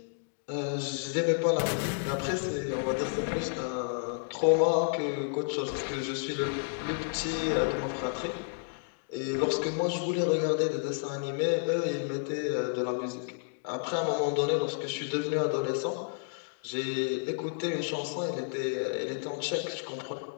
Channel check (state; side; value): silent; right; digital silence